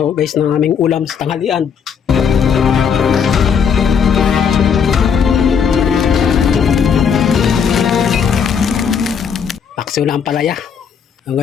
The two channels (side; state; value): right; quieter; 6.9 dB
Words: guys ng aming ulam sa tanghalian. Paksiw na ang palaya.